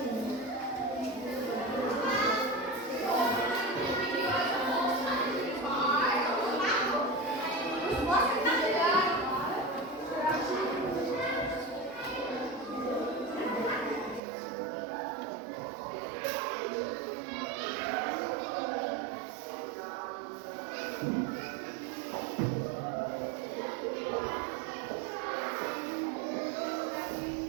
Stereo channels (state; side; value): drops out; left; at 14.2 s